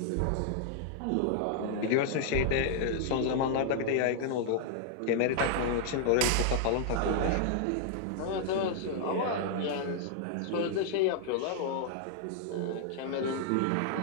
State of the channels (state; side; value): different; both; correlation -0.01